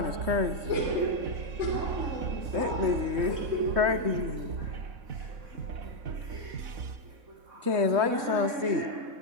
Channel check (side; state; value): left; late; 3.2 ms